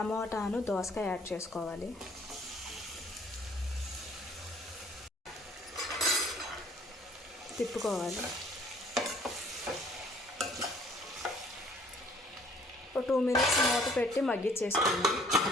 దోసకాయ యాడ్ చేసుకోవాలి. తిప్పుకోవాలి. 2 minutes మూత పెట్టి మగ్గించేసుకోండి.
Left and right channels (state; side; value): normal; both; correlation 0.58